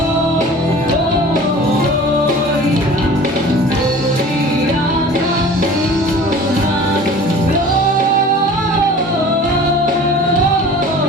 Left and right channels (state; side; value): normal; both; correlation 0.43